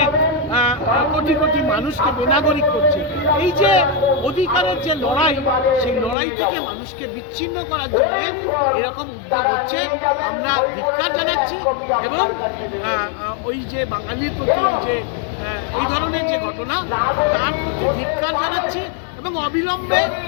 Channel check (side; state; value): right; drops out; at 6.2 s